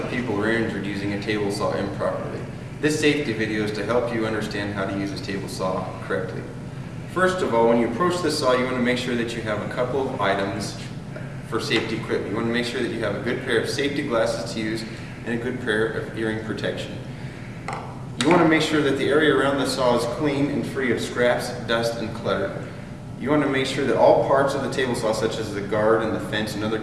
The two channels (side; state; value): both; identical; correlation 1.00